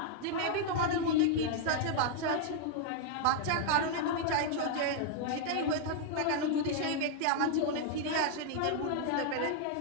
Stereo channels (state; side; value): different; both; correlation 0.00